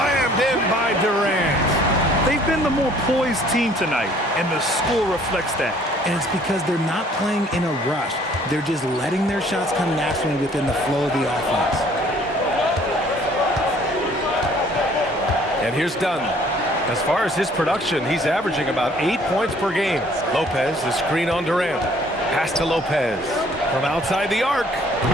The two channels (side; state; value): both; normal; correlation 0.58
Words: in by Durant. They've been the more poised team tonight, and the score reflects that. And it's because they're not playing in a rush. They're just letting their shots come naturally within the flow of the offense. And here's Dunn. As far as his production, he's averaging about 8 points per game. Lopez, the screen on Durant. Pass to Lopez from outside the arc.